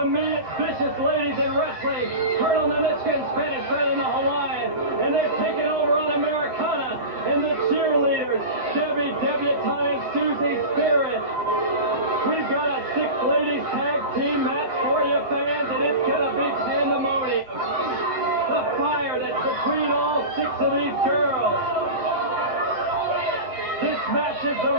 meanest, vicious ladies in wrestling. Colonel Nanichka and Spanish Red in the Hawaiian. And they're taking over on Americana. And the cheerleaders, Debbie Debutante and Susie Spirit. We've got a 6-ladies tag team match for you fans, and it's gonna be pandemonium. The fire that's between all 6 of these girls. This match is the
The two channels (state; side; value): late; left; 7.9 ms